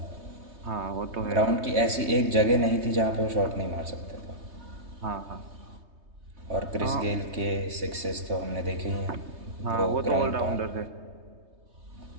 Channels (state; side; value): late; left; 3.2 ms